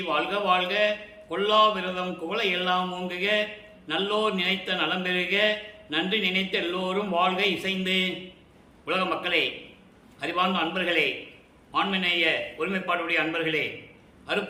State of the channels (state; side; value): identical; both; correlation 1.00